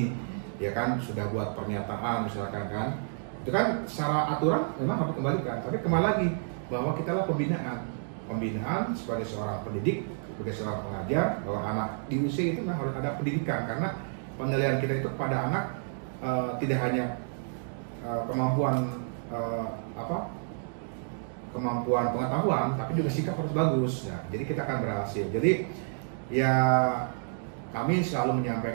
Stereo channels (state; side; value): silent; left; digital silence